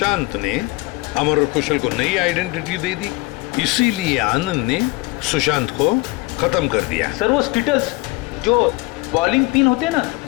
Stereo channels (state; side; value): quieter; right; 23.4 dB